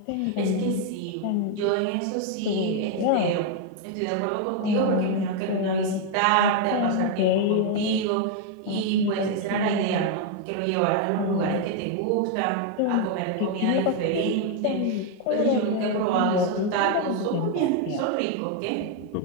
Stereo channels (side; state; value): both; different; correlation 0.01